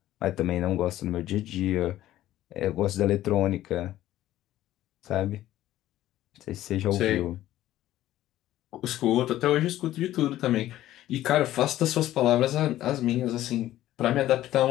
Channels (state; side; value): quieter; right; 14.0 dB